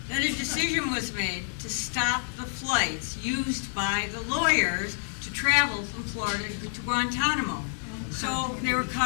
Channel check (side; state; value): right; silent; digital silence